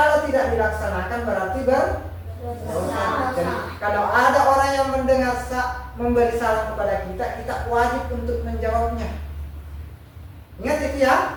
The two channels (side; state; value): both; identical; correlation 1.00